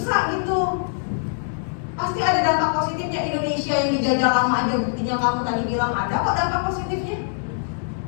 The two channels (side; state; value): right; silent; digital silence